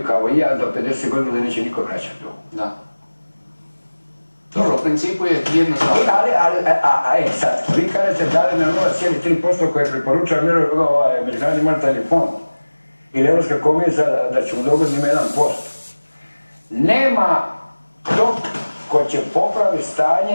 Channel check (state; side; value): inverted; both; correlation -1.00